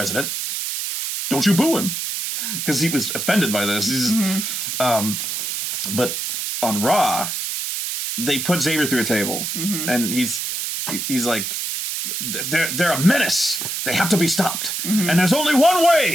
Don't you boo him. Because he was offended by this. But on Raw, they put Xavier through a table. And he's like... They're a menace. They have to be stopped. And there's only one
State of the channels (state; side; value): noise; right; hiss, 3 dB below the sound